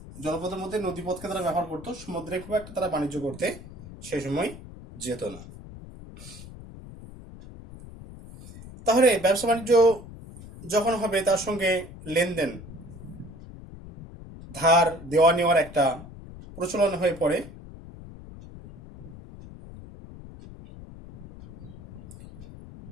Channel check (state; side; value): noise; left; rumble, 15 dB below the sound